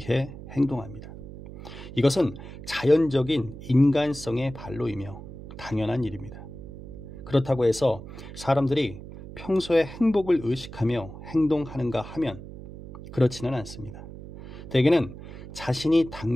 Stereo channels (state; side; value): noise; right; hum, 13 dB below the sound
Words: 행동합니다. 이것은 자연적인 인간성의 발로이며 당연한 일입니다. 그렇다고 해서 사람들이 평소에 행복을 의식하며 행동하는가 하면 그렇지는 않습니다. 대개는 자신이